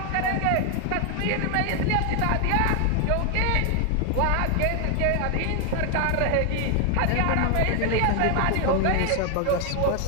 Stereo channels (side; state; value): both; different; correlation 0.00